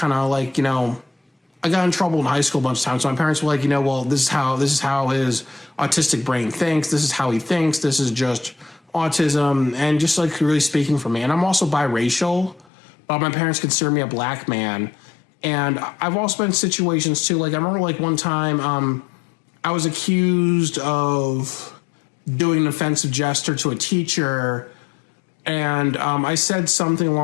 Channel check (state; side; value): drops out; right; at 12.7 s